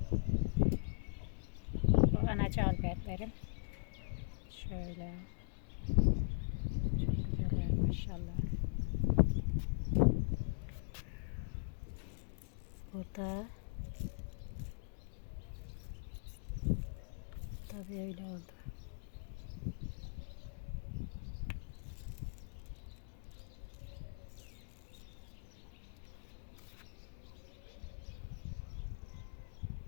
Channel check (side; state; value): right; silent; digital silence